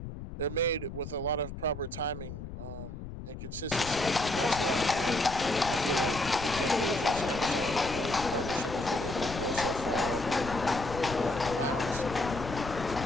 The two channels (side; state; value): left; noise; rumble, 9 dB below the sound